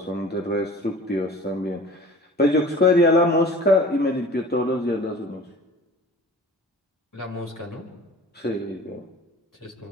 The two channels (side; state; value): both; normal; correlation 0.43